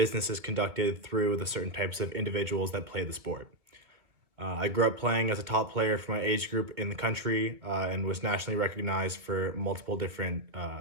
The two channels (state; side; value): late; left; 2.2 ms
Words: is conducted through the certain types of individuals that play the sport. I grew up playing as a top player for my age group in the country and was nationally recognized for multiple different